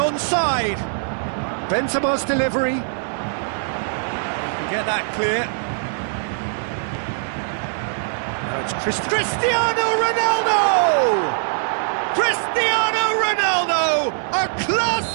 Benzema's delivery. He can get that clear. Now it's Cristiano Ronaldo! Cristiano Ronaldo! A class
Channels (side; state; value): left; silent; 56 dB below the other